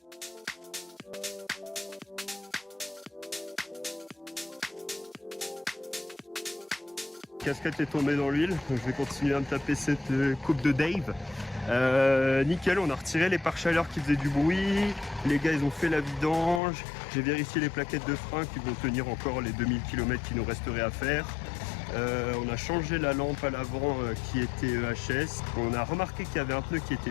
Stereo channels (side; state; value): right; drops out; at 16.6 s